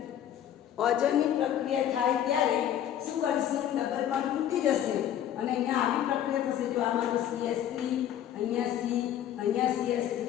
ઓઝોનની પ્રક્રિયા થાય ત્યારે શું કરીશું? ડબલ બોન્ડ તૂટી જશે અને અહીંયા આવી પ્રક્રિયા થશે. જો આ મારું CH3, અહીંયા C, અહીંયા CH3,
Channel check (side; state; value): right; quieter; 10.6 dB